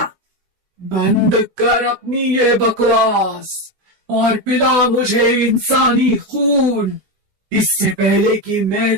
बंद कर अपनी ये बकवास। और पिला मुझे इंसानी खून, इससे पहले कि मैं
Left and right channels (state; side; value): late; left; 16 ms